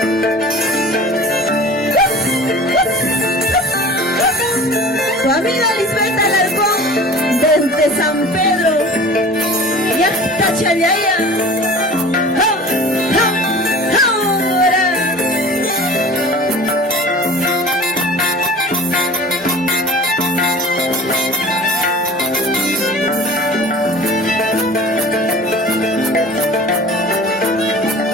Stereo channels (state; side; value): normal; both; correlation 0.41